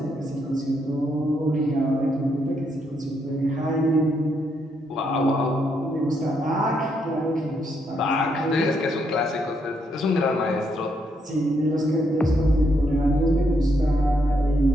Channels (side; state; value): both; normal; correlation 0.76